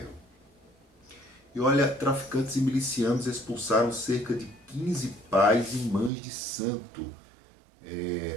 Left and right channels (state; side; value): drops out; left; at 6.1 s